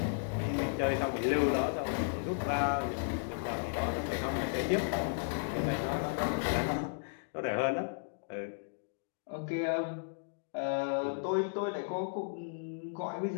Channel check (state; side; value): silent; right; digital silence